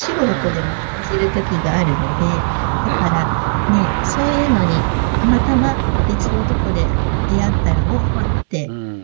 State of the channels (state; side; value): silent; left; 69 dB below the other